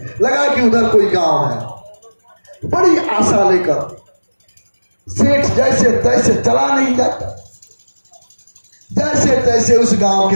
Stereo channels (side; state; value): both; inverted; correlation -1.00